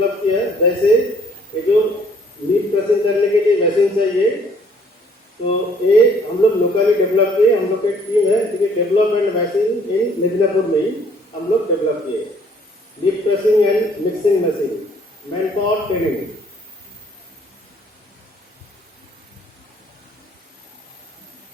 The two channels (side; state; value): both; normal; correlation 0.61